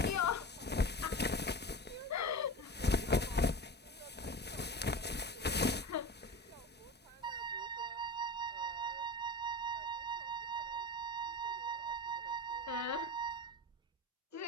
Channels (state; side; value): normal; both; correlation 0.29